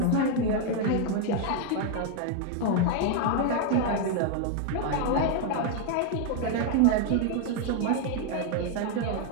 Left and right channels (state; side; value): different; both; correlation 0.00